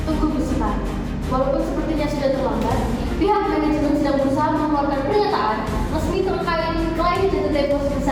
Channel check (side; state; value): both; identical; correlation 1.00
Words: Tunggu Gusita, walaupun sepertinya sudah terlambat, pihak manajemen sedang berusaha mengeluarkan pernyataan resmi terkait klaim jatuh tempo